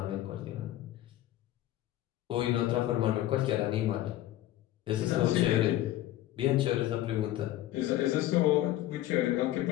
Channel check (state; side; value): quieter; right; 14.3 dB